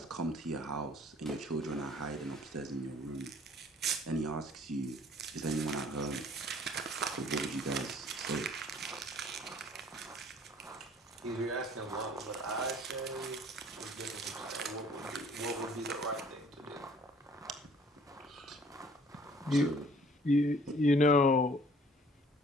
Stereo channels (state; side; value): normal; both; correlation 0.55